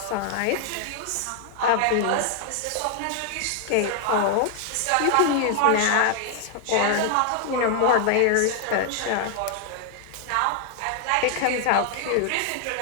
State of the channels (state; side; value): different; both; correlation 0.00